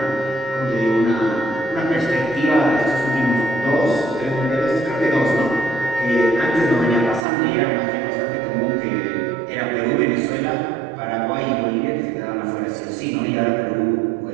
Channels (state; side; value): drops out; left; at 7.2 s